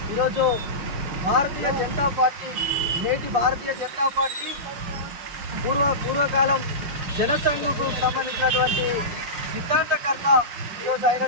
ఈరోజు భారతీయ జనతా పార్టీ, నేటి భారతీయ జనతా పార్టీ పూర్వకాలం జనసంఘకు సంబంధించినటువంటి సిద్ధాంతకర్త ఈరోజు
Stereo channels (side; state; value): left; late; 5.7 ms